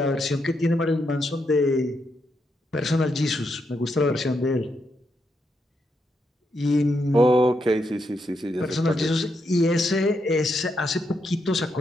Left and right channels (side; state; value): both; normal; correlation 0.81